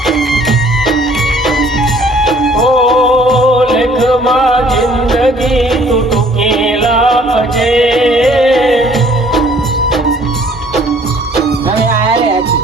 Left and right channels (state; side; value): normal; both; correlation 0.57